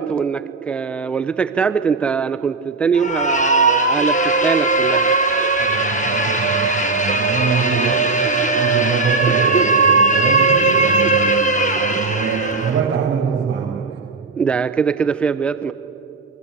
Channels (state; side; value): quieter; left; 3.7 dB